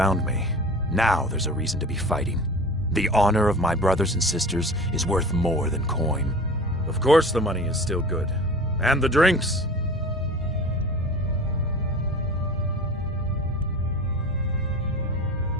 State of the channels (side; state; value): both; normal; correlation 0.37